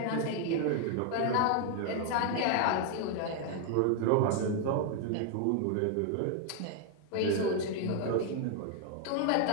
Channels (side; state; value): both; different; correlation 0.00